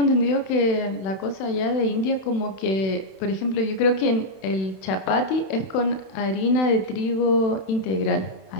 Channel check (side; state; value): right; late; 31 ms